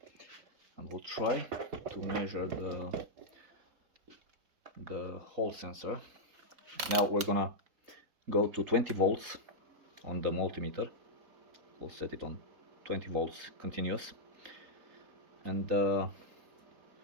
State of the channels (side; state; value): left; late; 4.1 ms